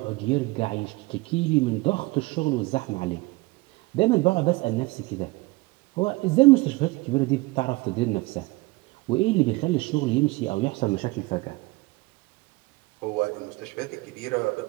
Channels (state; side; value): quieter; left; 23.0 dB